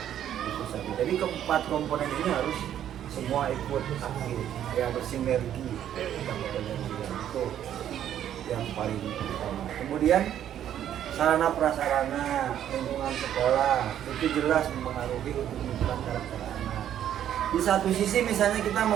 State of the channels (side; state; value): left; quieter; 10.6 dB